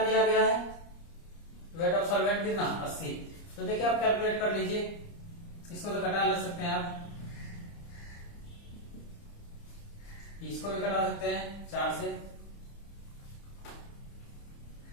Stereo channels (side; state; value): right; late; 30 ms